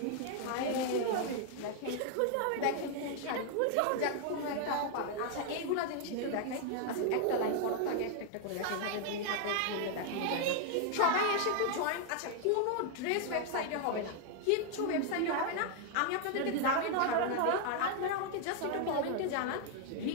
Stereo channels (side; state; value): both; different; correlation 0.00